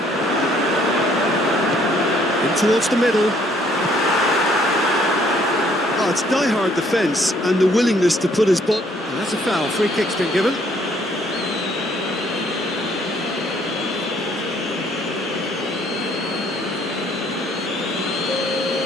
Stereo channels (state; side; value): normal; both; correlation 0.64